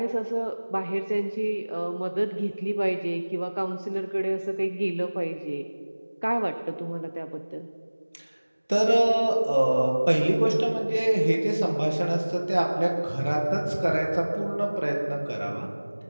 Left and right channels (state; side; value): inverted; both; correlation -1.00